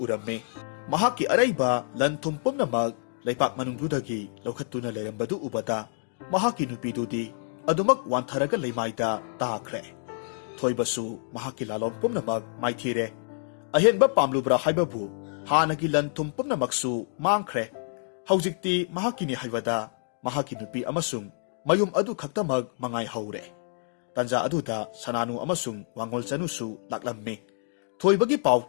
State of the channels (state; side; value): silent; right; digital silence